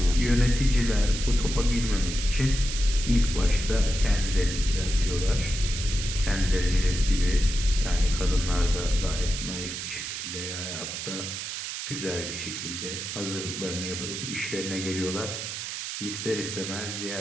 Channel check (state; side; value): noise; right; hiss, 6 dB below the sound